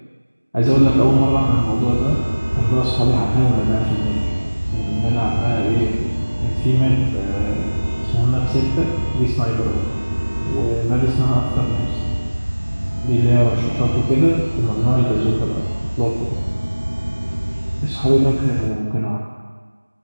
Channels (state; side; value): inverted; both; correlation -1.00